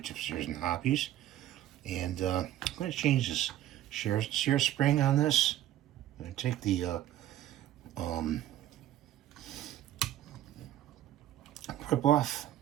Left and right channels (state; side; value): quieter; left; 12.9 dB